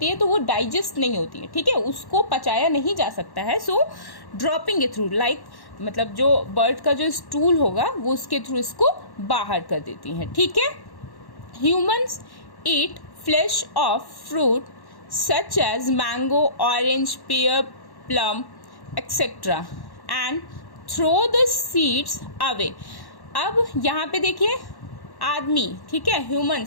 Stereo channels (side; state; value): right; late; 1.1 ms